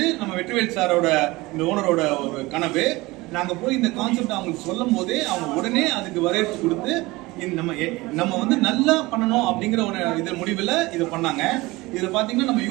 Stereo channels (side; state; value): left; quieter; 21.3 dB